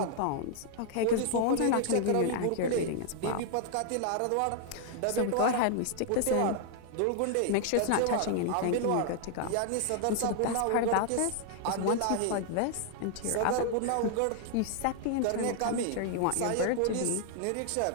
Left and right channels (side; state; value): both; different; correlation 0.00